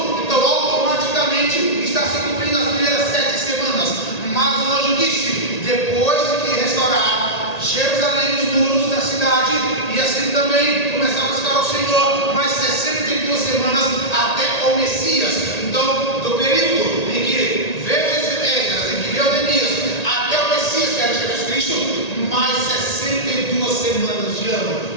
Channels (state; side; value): late; right; 1.8 ms